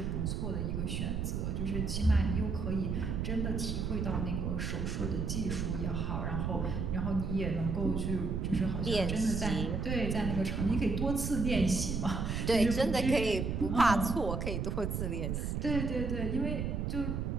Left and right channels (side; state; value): right; noise; rumble, 1 dB below the sound